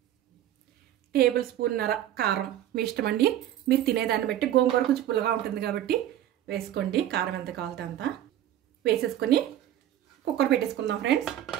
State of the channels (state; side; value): quieter; left; 12.0 dB